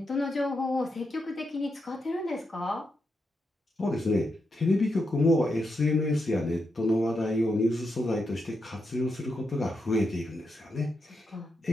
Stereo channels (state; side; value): normal; both; correlation 0.84